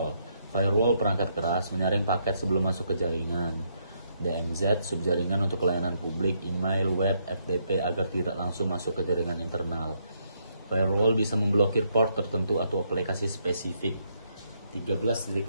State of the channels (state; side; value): inverted; both; correlation -0.75